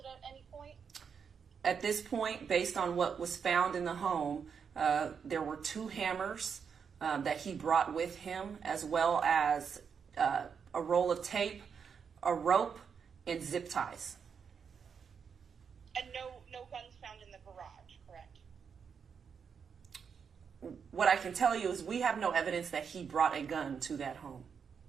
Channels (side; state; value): left; quieter; 6.6 dB